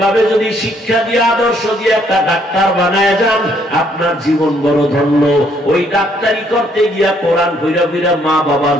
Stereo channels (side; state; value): both; normal; correlation 0.68